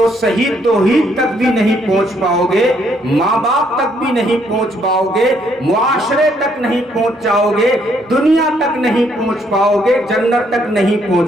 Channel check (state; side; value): normal; both; correlation 0.70